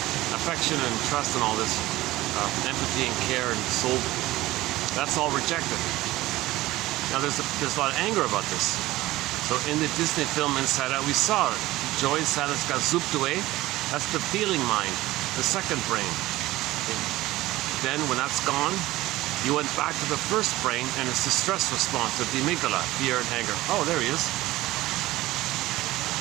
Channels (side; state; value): left; quieter; 17.5 dB